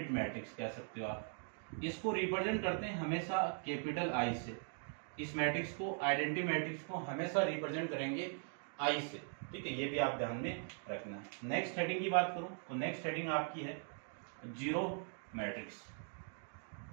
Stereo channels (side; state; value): left; silent; 51 dB below the other